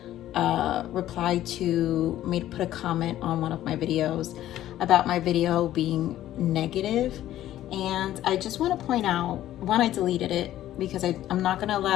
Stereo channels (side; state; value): right; quieter; 13.2 dB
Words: reply to put a comment on one of my videos about my video being negative, and I just want to point out, one, I deleted it because I'm not going to